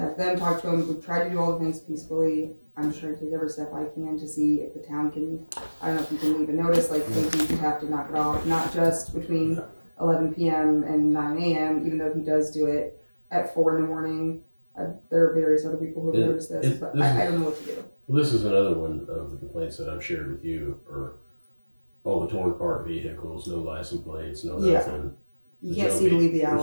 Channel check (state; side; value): inverted; both; correlation -1.00